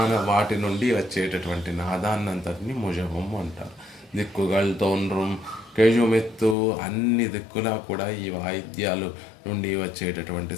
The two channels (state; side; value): drops out; right; at 6.6 s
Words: వాటి నుండి వచ్చేటటువంటి నాదాన్నంతటిని ముజవం అంటారు. దిక్కుగల్ తోన్రం కేజుమెత్తు, అన్ని దిక్కులా కూడా ఈ వాయిద్యాలు నుండి వచ్చేటటువంటి